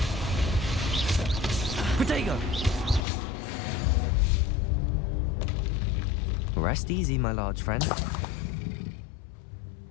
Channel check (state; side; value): drops out; right; at 3.1 s